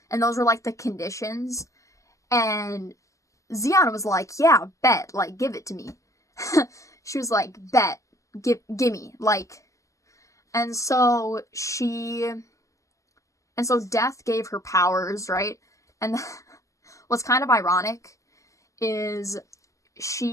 And those were like the conditions. And Xian was like, yeah, bet, like, give it to me. She was like, bet, gimme, like. And so Death gave her powers, right? And what's kind of ironic is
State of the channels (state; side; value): late; right; 0.16 ms